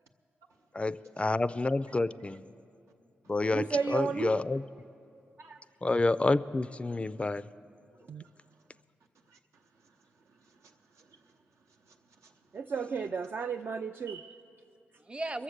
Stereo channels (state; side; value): normal; both; correlation 0.91